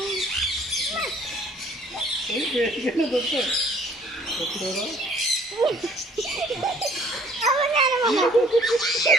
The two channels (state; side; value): normal; both; correlation 0.57